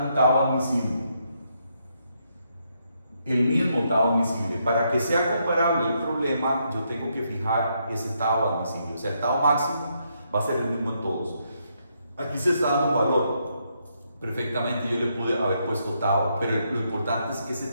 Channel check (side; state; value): both; inverted; correlation -0.77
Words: un tau admisible. El mismo tau admisible. Para que sea comparable el problema, yo tengo que fijar ese tau admisible. O sea, el tau máximo va a ser el mismo en todos. Aquí se está dando valor. Perfectamente yo le pude haber puesto tau, pero lo importante es que